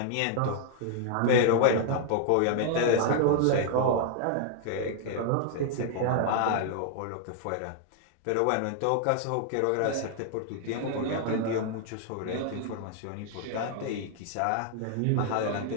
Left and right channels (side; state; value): both; different; correlation 0.00